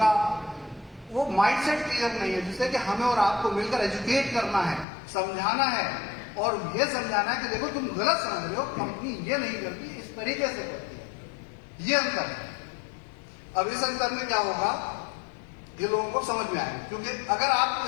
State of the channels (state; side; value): drops out; right; at 4.9 s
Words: वो माइंडसेट क्लियर नहीं है, जिससे कि हमें और आपको मिलकर एजुकेट करना है, समझाना है और ये समझाना है कि देखो तुम गलत समझ रहे हो, कंपनी ये नहीं करती, इस तरीके से करती है। ये अंतर है। अब इस अंतर में क्या होगा, ये लोगों को समझ में आएगा। क्योंकि अगर आप